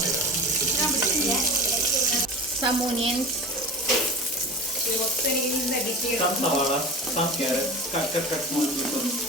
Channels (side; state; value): both; normal; correlation 0.33